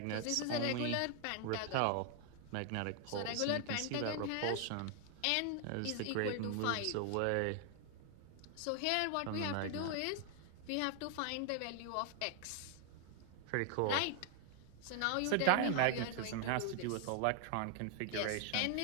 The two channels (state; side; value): different; both; correlation 0.00